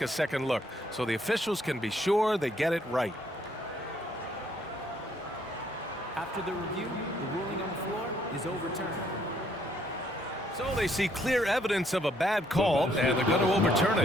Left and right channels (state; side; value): normal; both; correlation 0.68